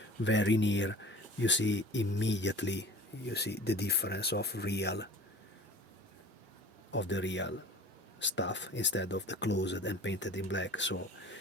very near, you see immediately, you see the difference of the real stuff instead of the closed and painted in black. So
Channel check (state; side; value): normal; both; correlation 0.43